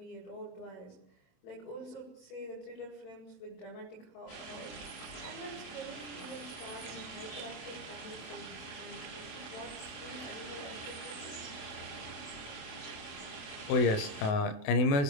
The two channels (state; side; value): late; right; 27 ms